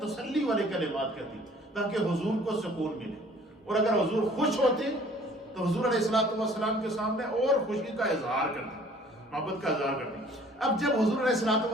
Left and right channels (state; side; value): normal; both; correlation 0.54